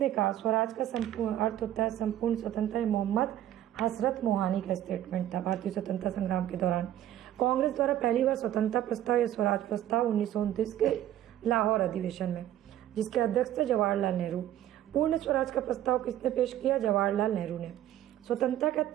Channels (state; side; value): quieter; left; 12.3 dB